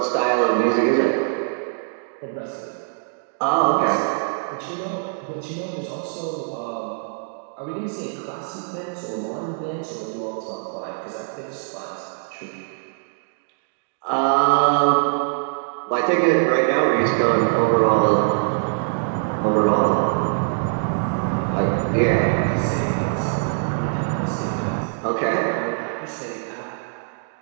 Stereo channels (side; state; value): left; silent; digital silence